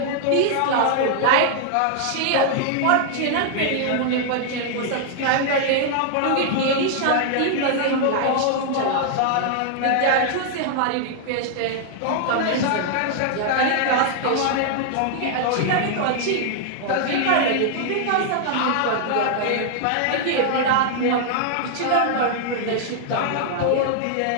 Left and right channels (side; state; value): both; different; correlation -0.01